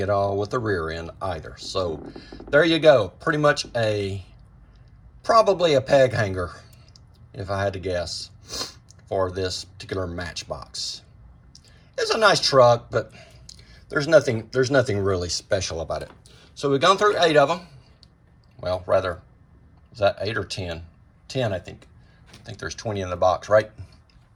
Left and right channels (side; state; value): both; identical; correlation 1.00